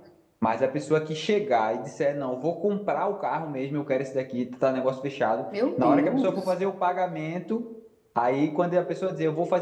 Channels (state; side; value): identical; both; correlation 1.00